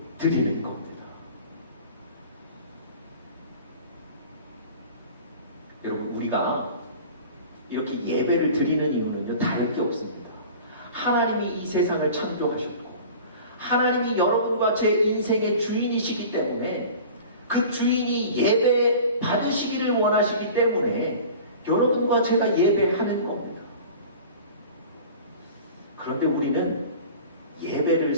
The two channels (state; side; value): inverted; both; correlation -0.41